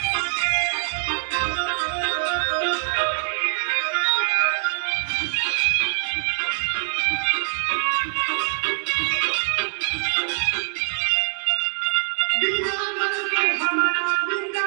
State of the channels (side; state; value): left; silent; digital silence